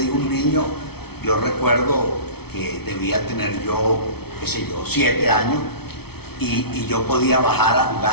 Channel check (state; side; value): late; right; 0.96 ms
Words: un niño, yo recuerdo que debía tener yo, 7 años, y yo podía bajar a